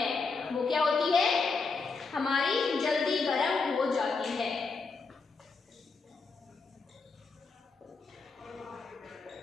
वो क्या होती है? हमारी जल्दी गर्म हो जाती है।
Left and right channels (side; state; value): right; quieter; 4.4 dB